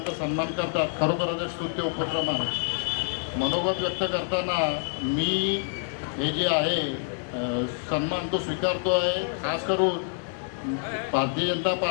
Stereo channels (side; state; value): right; silent; 60 dB below the other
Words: सन्मान करतात. खरोखरच स्तुत्य उपक्रम आहे. मनोगत व्यक्त करताना मी हे जे आहे सन्मान तो स्वीकारतो आहे. खास करून भारतीय जनता